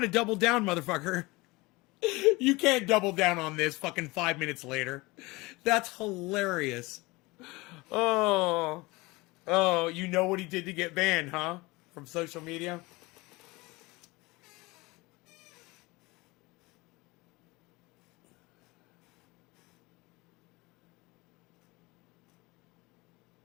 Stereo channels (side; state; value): right; quieter; 22.9 dB